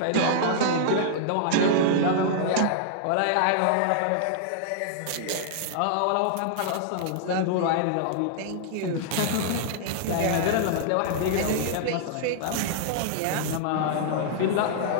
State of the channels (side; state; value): both; different; correlation -0.01